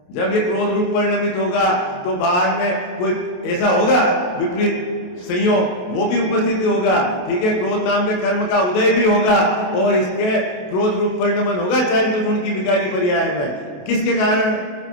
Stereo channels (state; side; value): late; right; 28 ms